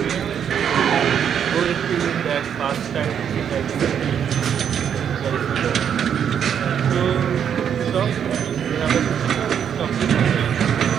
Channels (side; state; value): left; quieter; 8.4 dB